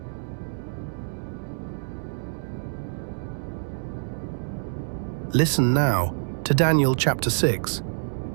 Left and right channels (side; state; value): left; silent; 61 dB below the other